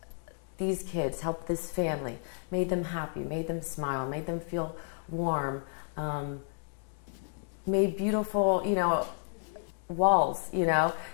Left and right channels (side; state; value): right; silent; digital silence